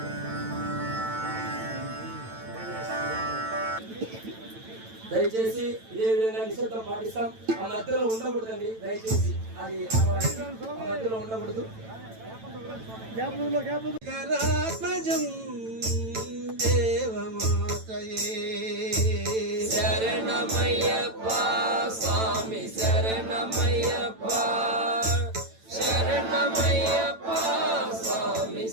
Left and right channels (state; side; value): late; left; 9.0 ms